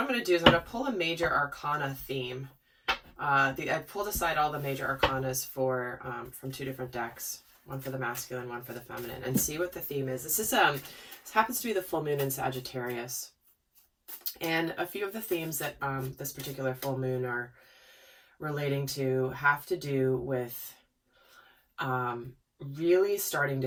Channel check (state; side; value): identical; both; correlation 1.00